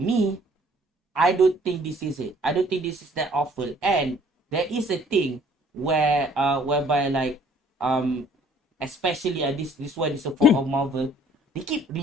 I don't think this is it. I don't think this is that awful. And there is a thing whereby like especially this one is a fault of Marvel. They keep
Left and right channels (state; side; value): normal; both; correlation 0.57